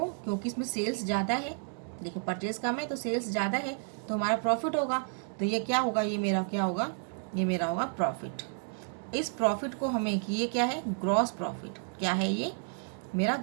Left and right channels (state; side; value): silent; left; 57 dB below the other